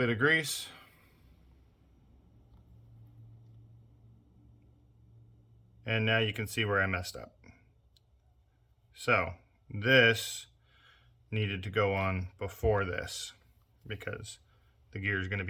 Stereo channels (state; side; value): identical; both; correlation 1.00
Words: of grease. And now you can see where I messed up. So this needed to go on before this because the gear is going to